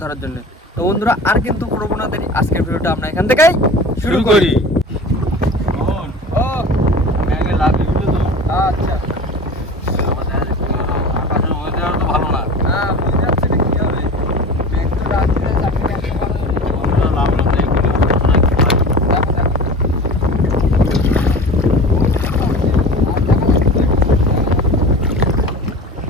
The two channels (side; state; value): both; normal; correlation 0.37